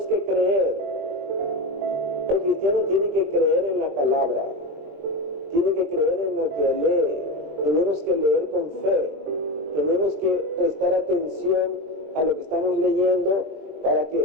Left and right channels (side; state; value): left; late; 20 ms